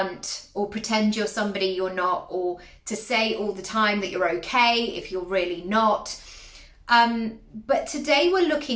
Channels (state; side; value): identical; both; correlation 1.00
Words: or pretend you're somebody you're not, or to say all the time that you're okay if you're really not. But today we're